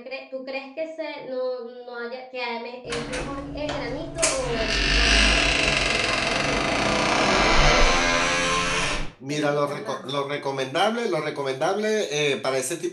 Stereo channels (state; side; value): identical; both; correlation 1.00